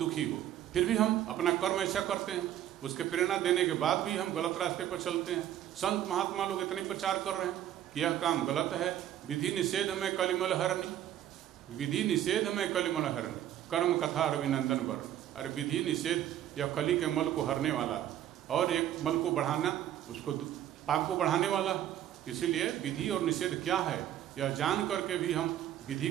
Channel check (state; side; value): quieter; left; 11.6 dB